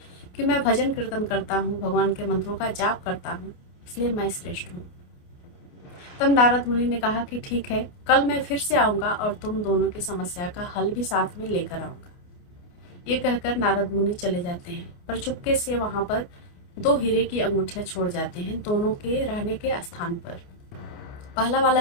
कि मैं भजन कीर्तन करता हूँ, भगवान के मंत्रों का जाप करता हूँ, इसलिए मैं श्रेष्ठ हूँ। तब नारद मुनि ने कहा कि ठीक है, कल मैं फिर से आऊंगा और तुम दोनों की समस्या का हल भी साथ में लेकर आऊंगा। ये कहकर नारद मुनि चले जाते हैं, पर चुपके से वहां पर दो हीरे की अंगूठियां छोड़ जाते हैं दोनों के रहने के स्थान पर। पहला वाला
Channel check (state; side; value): late; right; 28 ms